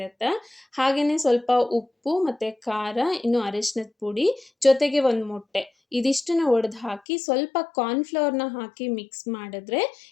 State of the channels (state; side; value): drops out; right; at 7.0 s